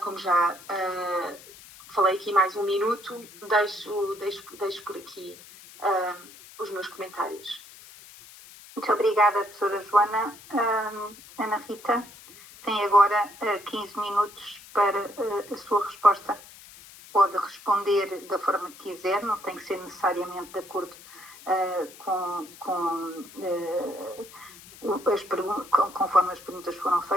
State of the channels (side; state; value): left; noise; hiss, 19 dB below the sound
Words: já falei aqui mais um minuto, deixo por aqui os meus comentários. Muito obrigada, professora Joana. Ana Rita tem agora 15 minutos para a sua resposta. Pode responder da forma que quiser, não tem que ser necessariamente de acordo conforme as perguntas foram